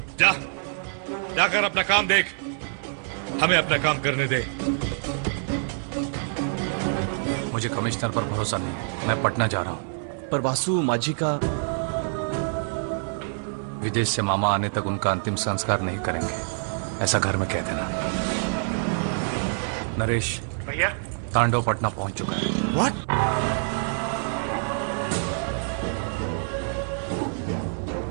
जा, जाकर अपना काम देख, हमें अपना काम करने दे। मुझे कमिश्नर पर भरोसा नहीं है। मैं पटना जा रहा हूँ। पर वासु माझी का विदेश से मामा आने तक उनका अंतिम संस्कार नहीं करेंगे, ऐसा घर में कह देना। नरेश भैया, तांडव पटना पहुंच चुका है। What?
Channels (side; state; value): left; silent; digital silence